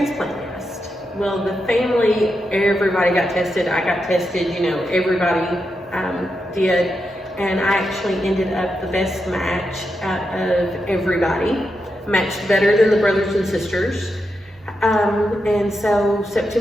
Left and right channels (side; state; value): both; normal; correlation 0.86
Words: list. Well, the family, everybody got tested. I got tested, you know, everybody did. And I actually ended up the best match out of everybody. matched better than the brothers and sisters. And so